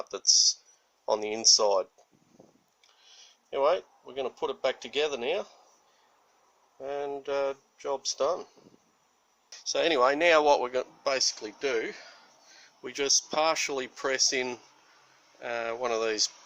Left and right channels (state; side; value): identical; both; correlation 1.00